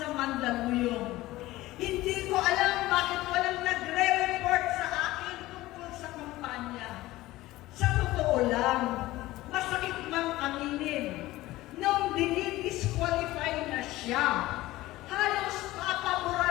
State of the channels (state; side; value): quieter; right; 17.5 dB